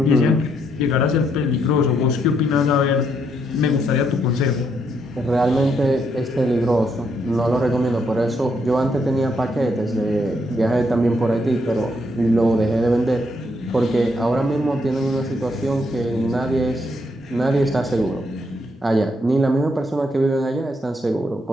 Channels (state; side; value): normal; both; correlation 0.75